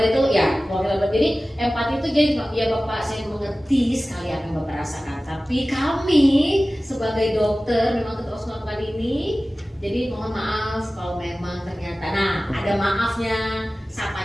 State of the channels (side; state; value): both; normal; correlation 0.96